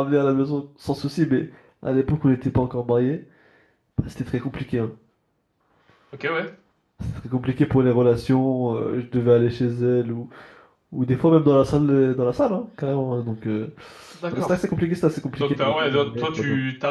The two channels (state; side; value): identical; both; correlation 1.00